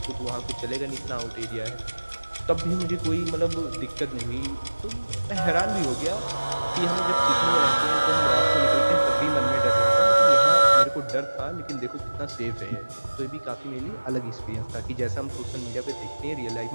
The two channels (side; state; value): both; inverted; correlation -1.00